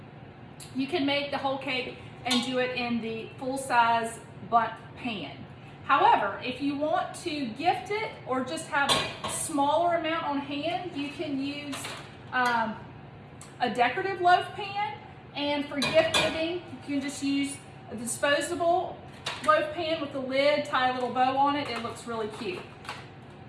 you can make the whole cake and do it in the full-size bundt pan. However, if you want to gift it or just have a smaller amount on hand, you can use a decorative loaf pan. And for gift giving, you can just use a disposable loaf pan with the lid, tie a little bow on it. It looks really cute.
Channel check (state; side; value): identical; both; correlation 1.00